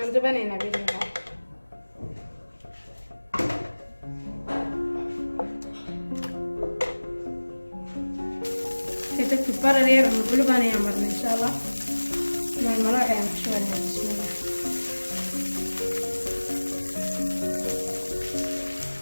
بنينا بإذن الله. تكتب برا رير ومقلوب أنا يعمرنا إن شاء الله. مع المراعي يعني شو بسم الله.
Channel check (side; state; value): both; inverted; correlation -1.00